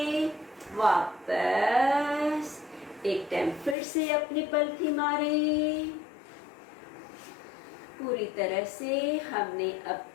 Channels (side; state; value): right; drops out; at 3.8 s